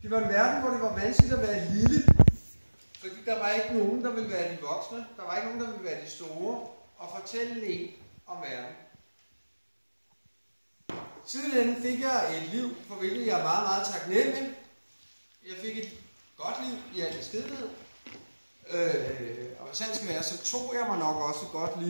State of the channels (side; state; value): both; inverted; correlation -1.00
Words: Det var en verden, hvor det var vanskeligt at være lille, fordi der var ikke nogen, der ville være de voksne, der var ikke nogen, der ville være de store, og fortælle en om verden. Sidenhen fik jeg et liv, for hvilket jeg er meget, meget taknemmelig. Jeg fik et godt liv i al beskedenhed. Og hvis det skal være, så tog jeg mig nok også et godt